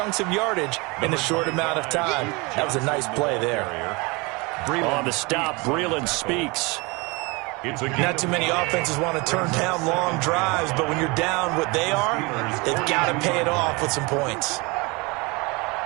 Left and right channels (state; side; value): quieter; left; 26.7 dB